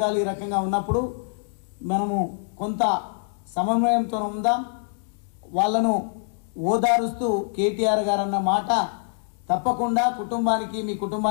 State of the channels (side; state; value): right; silent; 62 dB below the other